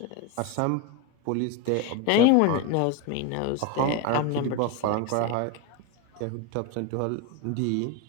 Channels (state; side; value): different; both; correlation 0.03